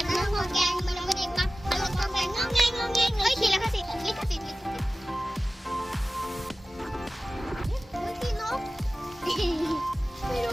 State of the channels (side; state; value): both; normal; correlation 0.96